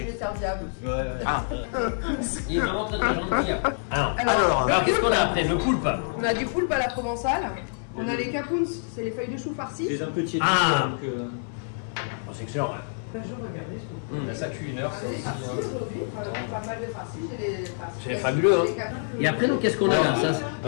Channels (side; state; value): right; silent; 61 dB below the other